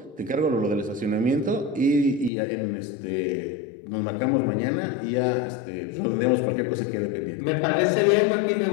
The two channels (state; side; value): drops out; right; at 2.3 s